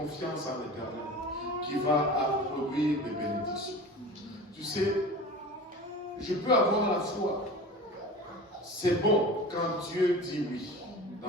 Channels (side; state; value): both; normal; correlation 0.35